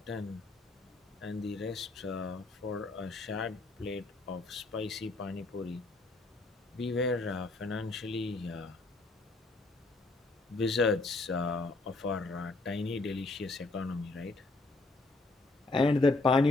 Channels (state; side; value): quieter; right; 3.2 dB